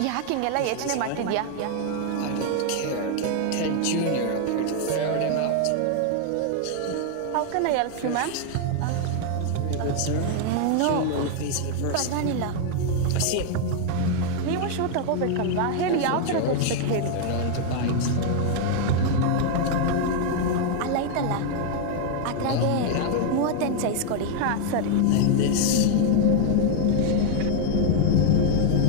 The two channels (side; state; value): both; different; correlation 0.00